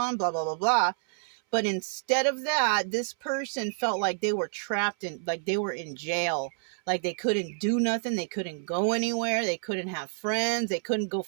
blah, blah, blah, blah. But instead of that, this person felt like they were trapped in, like they were in jail. Like they couldn't do nothing. They couldn't go anywhere. They couldn't have friends. They couldn't go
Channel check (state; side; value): silent; left; 59 dB below the other